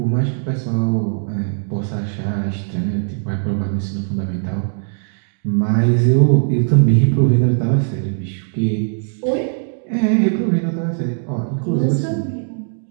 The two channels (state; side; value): silent; left; 66 dB below the other